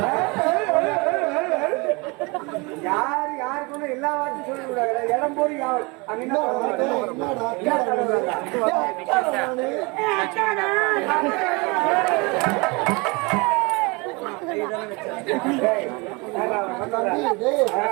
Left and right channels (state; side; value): quieter; left; 27.6 dB